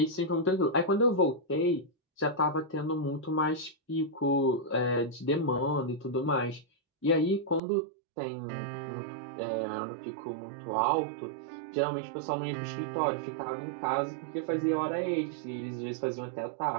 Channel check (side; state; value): left; drops out; at 7.6 s